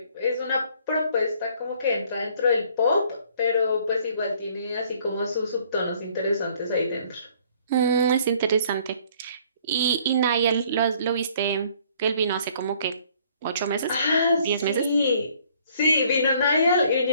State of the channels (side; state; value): both; inverted; correlation -0.60